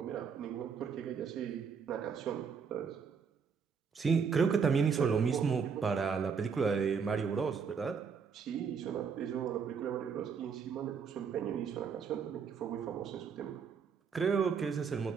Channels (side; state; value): left; quieter; 6.2 dB